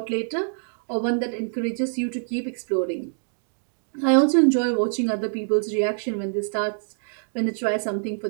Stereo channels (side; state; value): left; silent; digital silence